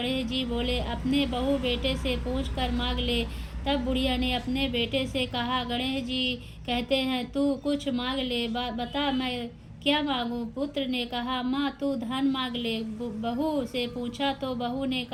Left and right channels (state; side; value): identical; both; correlation 1.00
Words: जी बोले, अपने बहू बेटे से पूछ कर मांग ले। तब बुढ़िया ने अपने बेटे से कहा, गणेश जी कहते हैं तू कुछ मांग ले, बता मैं क्या मांगूं। पुत्र ने कहा, माँ तू धन मांग ले। बहू से पूछा तो बहू ने